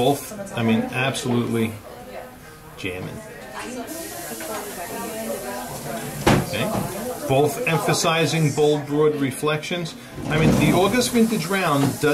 I mean, absolutely jamming. Okay. Both emphasizing bold, broad reflections. I mean, the August Vintage round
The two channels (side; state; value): both; identical; correlation 1.00